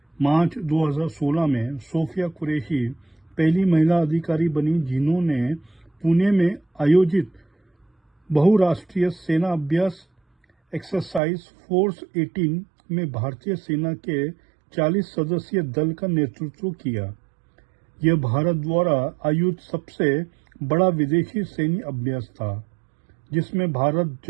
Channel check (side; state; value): left; drops out; at 11.2 s